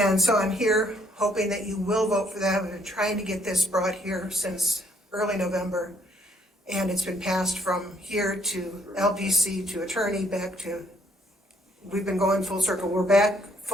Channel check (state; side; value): normal; both; correlation 0.66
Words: so I'm here hoping that you will vote for that. We've been trying to get this brought here since early November, and it's been passed from here to LPC to attorney back to, we've been going full circle. We're back